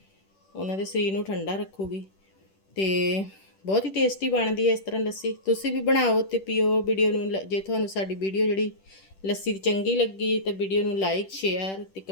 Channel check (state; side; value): late; right; 10 ms